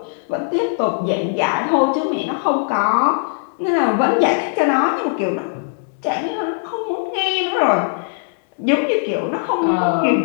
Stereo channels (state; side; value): silent; right; digital silence